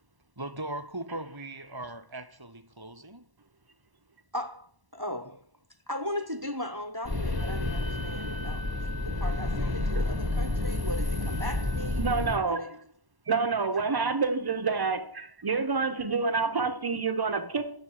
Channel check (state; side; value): late; left; 1.1 ms